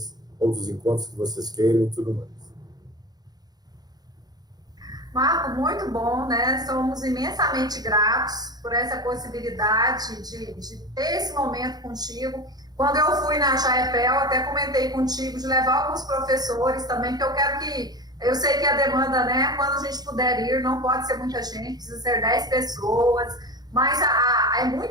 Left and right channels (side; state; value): left; late; 0.19 ms